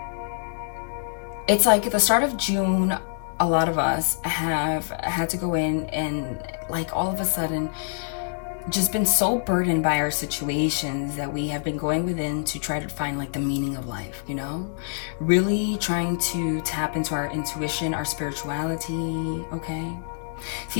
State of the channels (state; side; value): silent; right; digital silence